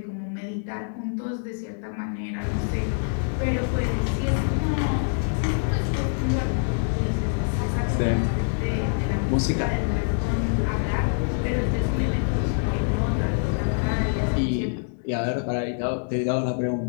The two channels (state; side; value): silent; right; 62 dB below the other